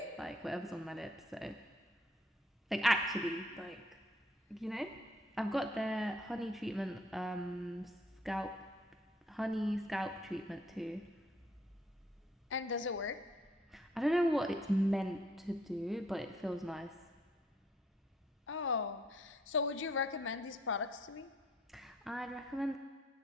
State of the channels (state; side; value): normal; both; correlation 0.65